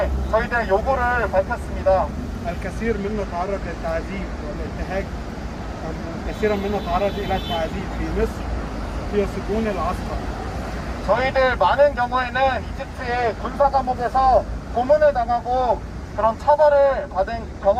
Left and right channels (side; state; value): both; identical; correlation 1.00